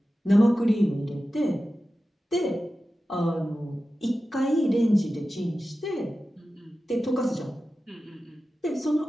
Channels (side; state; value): both; normal; correlation 0.94